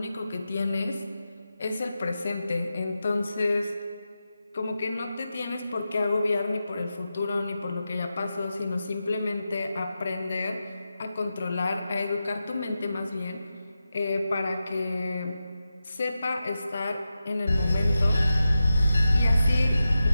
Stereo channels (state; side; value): inverted; both; correlation -0.91